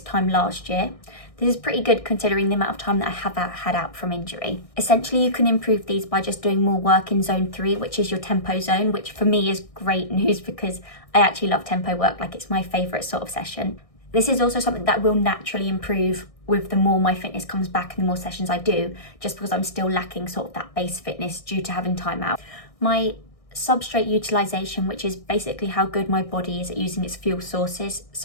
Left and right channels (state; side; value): late; right; 1.6 ms